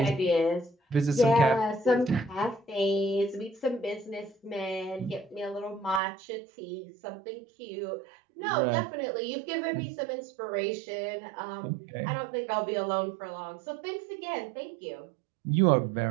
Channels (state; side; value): drops out; left; at 6.0 s